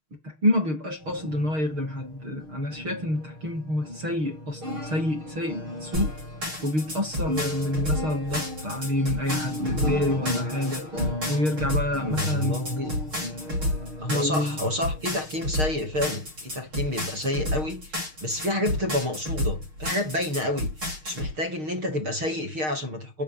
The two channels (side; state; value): left; late; 6.5 ms